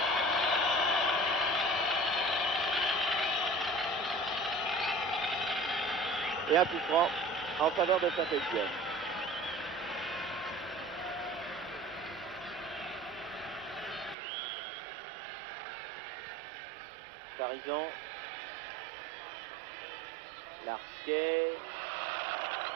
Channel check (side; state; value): left; drops out; at 14.2 s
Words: Et un coup franc en faveur de Saint-Étienne. Farison, Larquet,